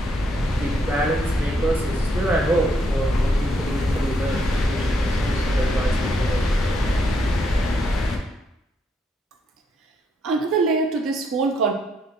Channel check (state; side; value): normal; both; correlation 0.75